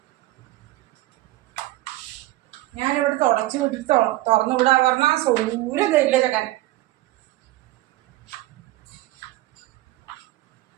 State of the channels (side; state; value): left; quieter; 17.3 dB